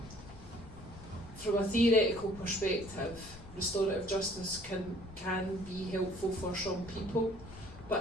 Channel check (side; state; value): left; noise; rumble, 17 dB below the sound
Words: from a theoretical perspective, restorative justice can be helpful for some people, but